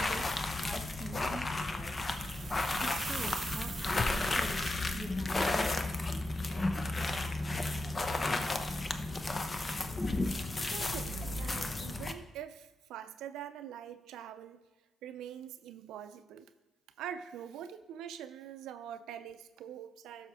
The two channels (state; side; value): normal; both; correlation 0.87